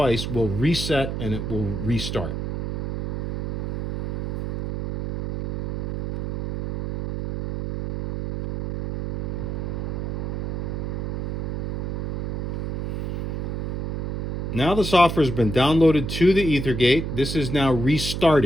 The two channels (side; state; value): right; noise; hum, 2 dB below the sound